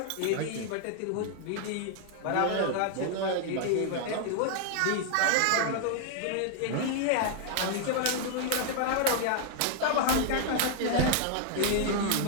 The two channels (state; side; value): different; both; correlation 0.00